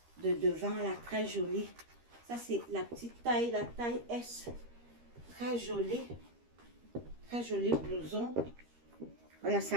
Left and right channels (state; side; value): late; left; 13 ms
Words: de devant là. Très jolie. Ça, c'est la petite taille, la taille S. Très joli. Très joli blouson. Voilà,